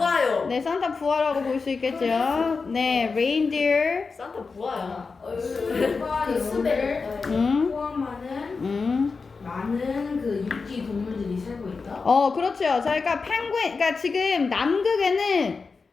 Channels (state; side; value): quieter; right; 4.6 dB